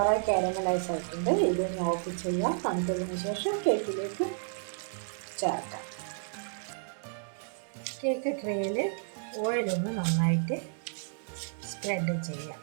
കാരമലൈസ് ആയിട്ടുണ്ട്. ഇതിനെ ഓഫ് ചെയ്യാം. തണുത്തതിന് ശേഷം കേക്കിലേക്ക് ചേർക്കാം. കേക്ക് ട്രേയിൽ ഓയിലൊന്ന് നന്നായിട്ട് സ്പ്രെഡ് ചെയ്യാം.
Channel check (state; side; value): silent; left; 57 dB below the other